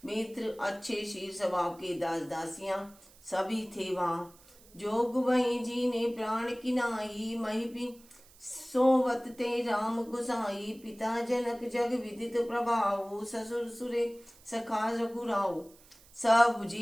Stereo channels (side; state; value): right; noise; hiss, 25 dB below the sound